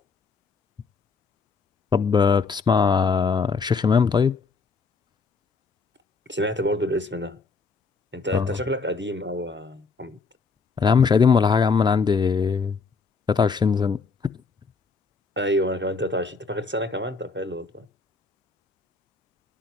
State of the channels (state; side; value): quieter; right; 4.7 dB